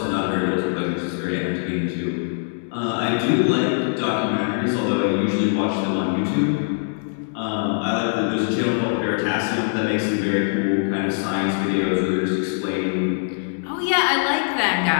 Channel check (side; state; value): right; silent; digital silence